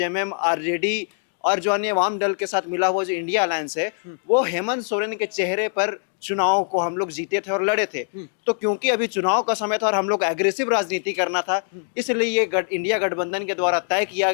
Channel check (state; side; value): silent; right; 63 dB below the other